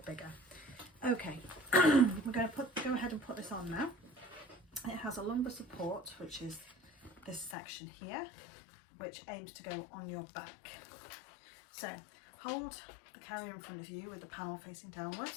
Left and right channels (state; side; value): drops out; right; at 7.6 s